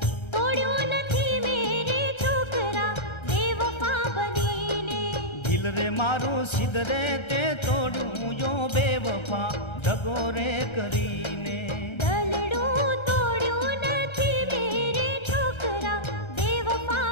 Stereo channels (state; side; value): late; right; 1.3 ms